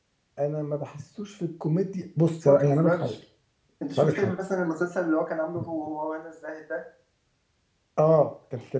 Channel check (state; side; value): identical; both; correlation 1.00